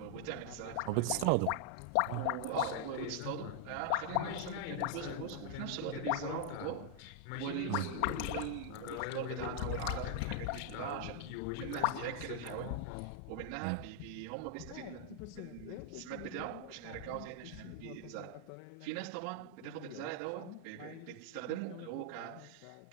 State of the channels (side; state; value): both; different; correlation 0.00